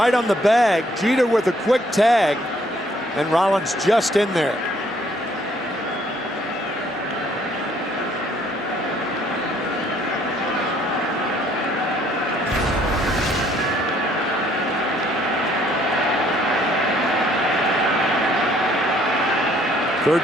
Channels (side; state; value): both; normal; correlation 0.64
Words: on the bag. Jeter with a quick tag, and Rollins just in there.